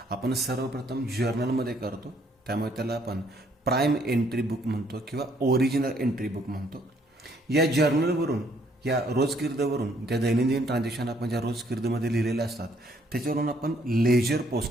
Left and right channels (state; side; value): normal; both; correlation 0.66